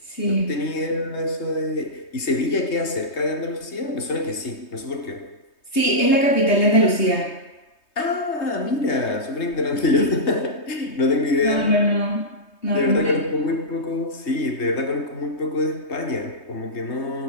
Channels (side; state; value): right; late; 3.2 ms